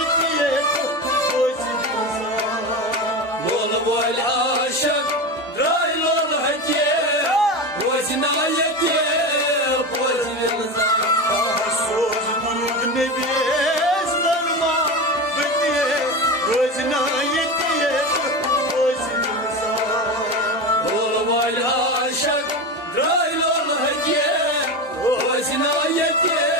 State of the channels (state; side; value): normal; both; correlation 0.22